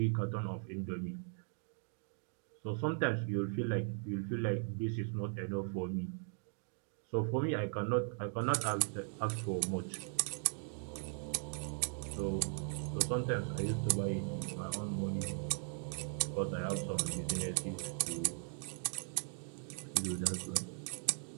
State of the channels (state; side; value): silent; left; 52 dB below the other